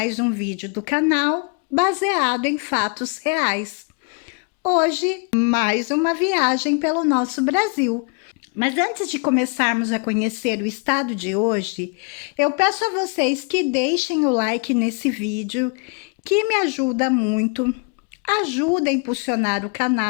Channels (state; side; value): quieter; right; 33.7 dB